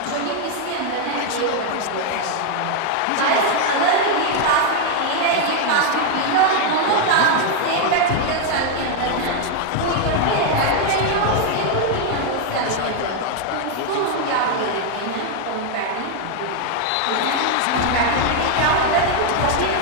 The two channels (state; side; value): different; both; correlation 0.01